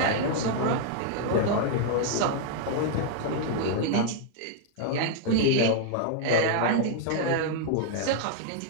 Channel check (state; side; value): different; both; correlation 0.00